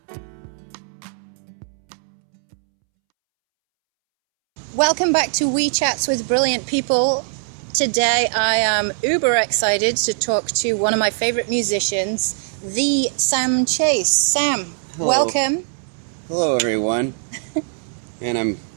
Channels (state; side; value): silent; left; 65 dB below the other